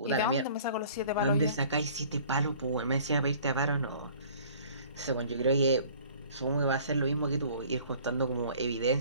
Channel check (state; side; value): inverted; both; correlation -0.51